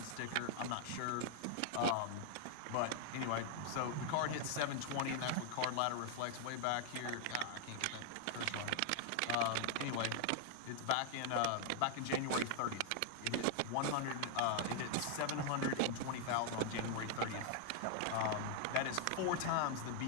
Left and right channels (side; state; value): both; different; correlation 0.00